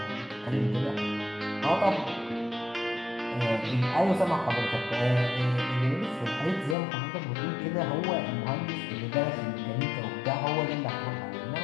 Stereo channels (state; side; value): drops out; right; at 6.8 s